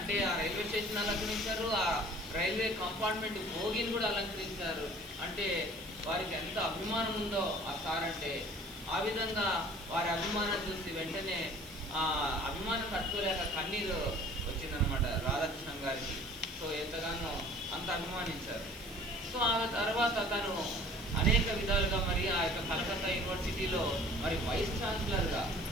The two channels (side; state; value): right; noise; hiss, 18 dB below the sound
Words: ఆ రైల్వే స్టేషన్ అలంకరించారు, ఆ రైల్వే కంపార్ట్మెంట్ భోగిని కూడా అలంకరించారు. అంటే వారికి ఎంత అభిమానం ఉందో ఆ సార్ అంటే. ఆ విధంగా వారి అభిమానం చూసి వెంటనే ఆ అభిమానం తట్టుకోలేక కన్నీరు వచ్చిందనమాట రాధాకృష్ణన్ గారికి. సో ఎంతగానో అంత అభిమానించారు. సో ఆ తర్వాత తను అనేక విధాలుగా మరి ఆ యొక్క కలకత్తా యూనివర్సిటీలో మరి వైస్ ఛాన్సలర్గా,